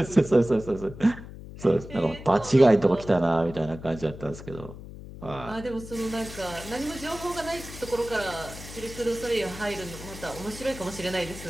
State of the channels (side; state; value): left; noise; hum, 14 dB below the sound